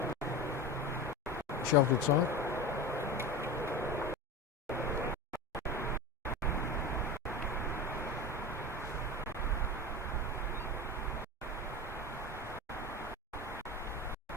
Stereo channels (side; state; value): both; normal; correlation 0.26